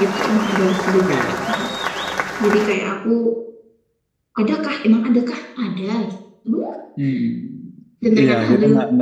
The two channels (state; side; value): identical; both; correlation 1.00